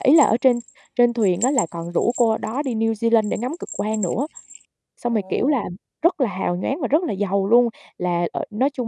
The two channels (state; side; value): identical; both; correlation 1.00